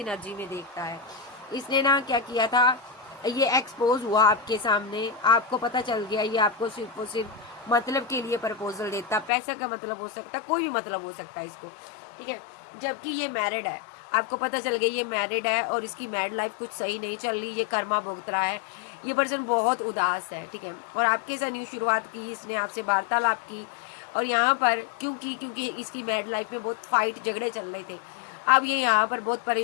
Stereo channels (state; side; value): drops out; right; at 9.3 s